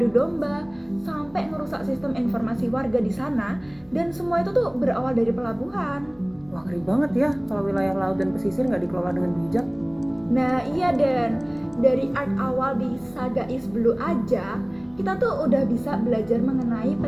domba, sampai ngerusak sistem informasi warga di sana, dan semua itu tuh berawal dari pelabuhan. Wah, ngeri banget ya kalau wilayah laut dan pesisir nggak dikelola dengan bijak. Nah iya Den, dari arc awal di saga East Blue aja, kita tuh udah bisa belajar mengenai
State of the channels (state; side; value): noise; left; hum, 30 dB below the sound